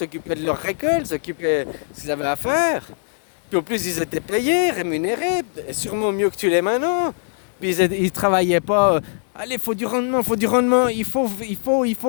de leur récolte, s'occupaient de ce qu'ils avaient à faire. Puis en plus, ils étaient payés, rémunérés, et sûrement mieux que tu l'es maintenant. Puis ils travaillaient pas. Allez, faut du rendement, faut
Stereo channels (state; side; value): silent; right; 65 dB below the other